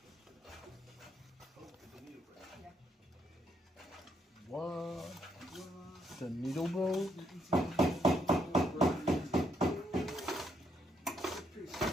What? The needle broke?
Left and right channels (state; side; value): normal; both; correlation 0.74